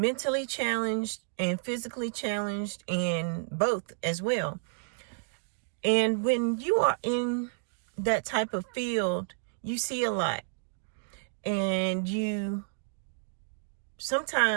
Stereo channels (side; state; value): left; silent; digital silence